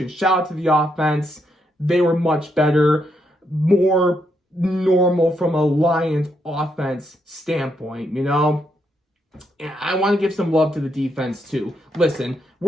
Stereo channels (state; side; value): normal; both; correlation 0.78